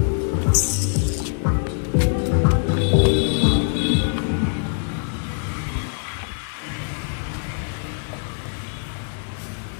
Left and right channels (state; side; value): silent; right; 63 dB below the other